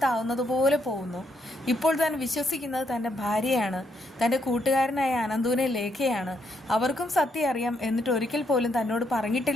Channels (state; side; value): normal; both; correlation 0.76